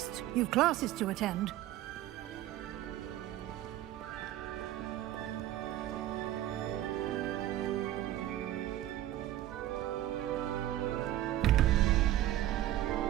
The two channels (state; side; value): quieter; left; 13.5 dB